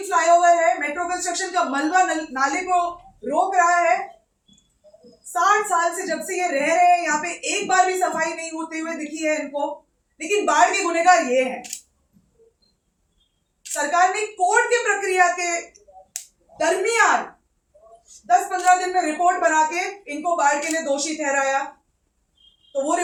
फ्लाईओवर है, मेट्रो कंस्ट्रक्शन का मलबा नाले को रोक रहा है। 60 साल से जब से ये रह रहे हैं यहाँ पे एक बार भी सफाई नहीं होते हुए दिखी है इनको। लेकिन बाढ़ के गुनहगार ये हैं। सरकार ने कोर्ट की प्रक्रिया के दरमियान 10-15 दिन में रिपोर्ट बना के इनको बाढ़ के लिए दोषी ठहराया। तो वो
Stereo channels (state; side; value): identical; both; correlation 1.00